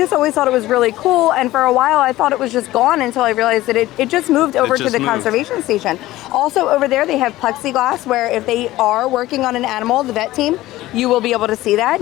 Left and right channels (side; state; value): right; quieter; 16.6 dB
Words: always thought it was really cool. And for a while I thought it was just gone, until I realized that it just moved over to the conservation station. Also over there they have plexiglass, where if they are working on an animal, the vet team, you will be able to see that.